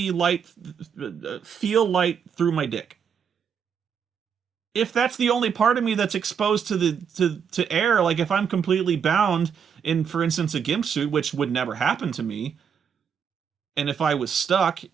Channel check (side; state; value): left; quieter; 7.2 dB